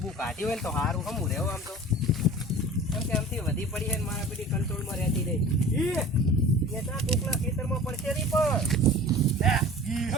કાઢ્યું હોય ને તો સારું હમું રહેવું આમ તો. કેમ કે આમથી વધી પડી છે ને મારા પેલી કંટ્રોલમાં રહેતી રહી. એ ત્યાં ટૂંકના ખેતરમાં પડશે નહીં પણ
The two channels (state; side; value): normal; both; correlation 0.41